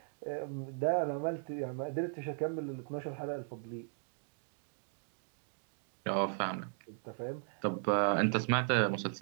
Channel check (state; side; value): silent; left; digital silence